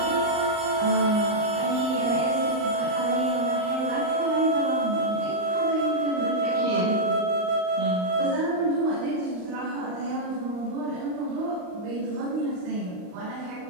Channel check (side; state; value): left; late; 39 ms